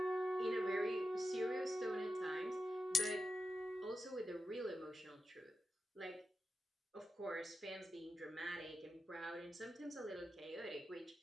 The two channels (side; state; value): both; normal; correlation 0.90